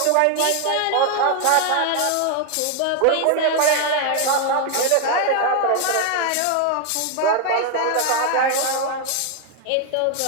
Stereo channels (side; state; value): both; different; correlation 0.01